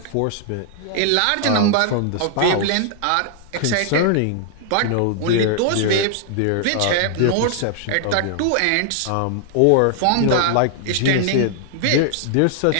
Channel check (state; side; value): different; both; correlation 0.00